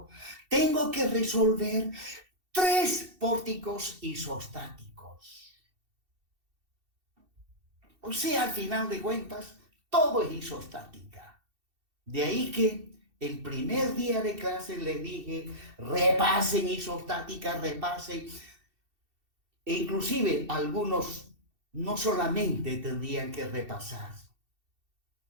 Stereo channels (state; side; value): late; left; 2.7 ms